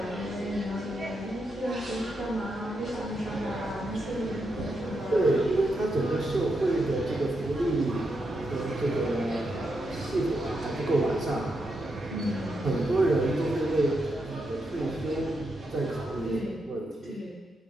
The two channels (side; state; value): both; normal; correlation 0.83